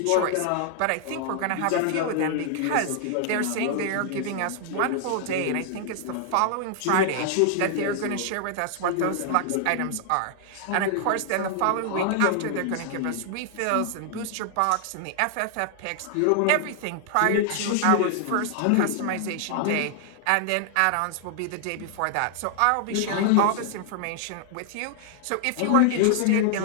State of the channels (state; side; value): different; both; correlation 0.00